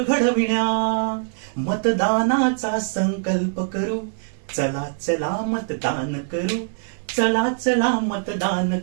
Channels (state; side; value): silent; left; digital silence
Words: मतदानाचा संकल्प करू, चला चला मतदान करू, चला चला मतदान